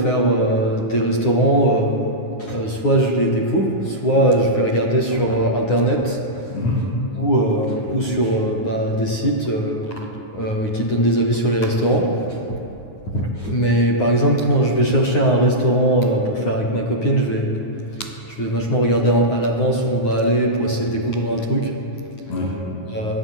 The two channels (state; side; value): late; right; 9.6 ms